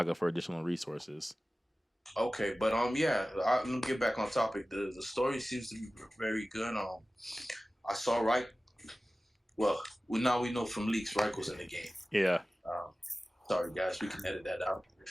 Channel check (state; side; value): normal; both; correlation 0.96